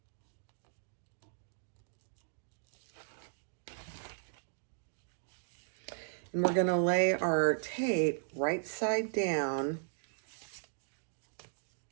we're going to lay our tape right side down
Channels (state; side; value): silent; left; digital silence